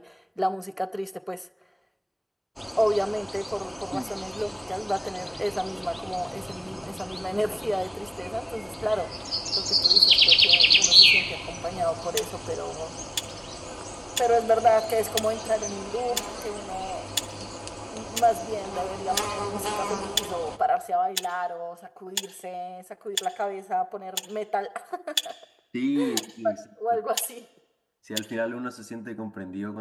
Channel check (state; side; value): identical; both; correlation 1.00